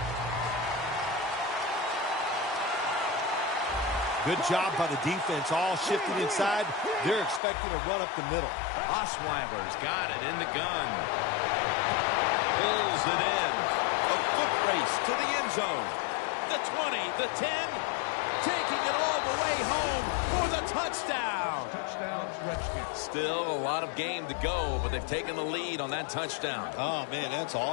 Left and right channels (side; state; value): right; drops out; at 7.4 s